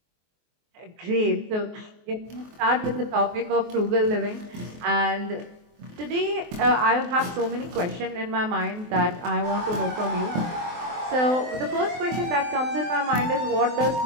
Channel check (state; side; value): late; left; 23 ms